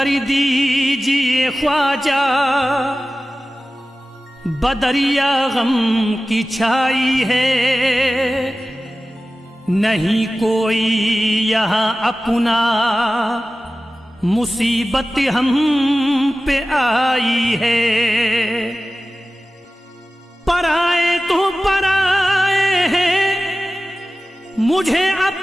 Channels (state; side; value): normal; both; correlation 0.95